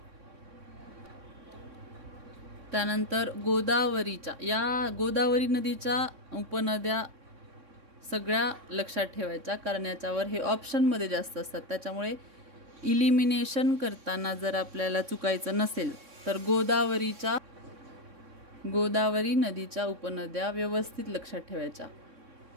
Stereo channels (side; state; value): left; late; 3.6 ms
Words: त्यानंतर गोदावरीच्या, या गोदावरी नदीच्या उपनद्या सगळ्या लक्षात ठेवायच्या कारण याच्यावर हे ऑप्शनमध्ये जास्त असतात. त्याच्यामुळे इलिमिनेशन करताना जर आपल्याला चुकायचं नसेल तर गोदावरी नदीच्या उपनद्या व्यवस्थित लक्षात ठेवायच्या.